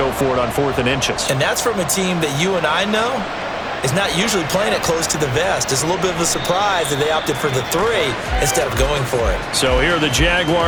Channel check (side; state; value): both; identical; correlation 1.00